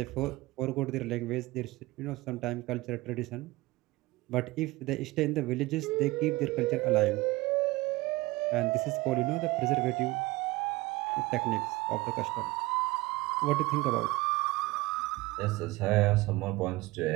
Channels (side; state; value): left; quieter; 20.4 dB